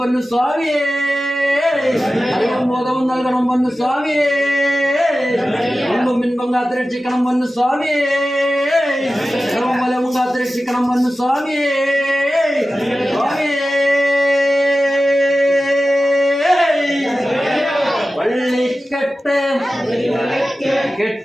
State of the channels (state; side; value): normal; both; correlation 0.94